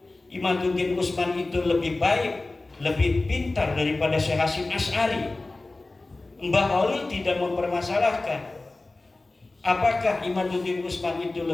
Imaduddin Utsman itu lebih baik, lebih pintar daripada Syekh Hasyim Asy'ari? Mbah Khalil tidak mempermasalahkan. Apakah Imaduddin Utsman itu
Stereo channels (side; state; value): right; quieter; 3.1 dB